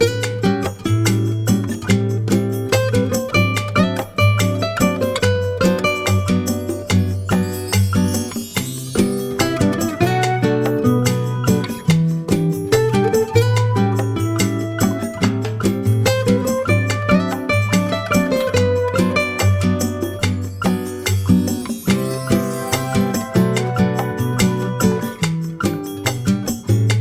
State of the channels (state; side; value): identical; both; correlation 1.00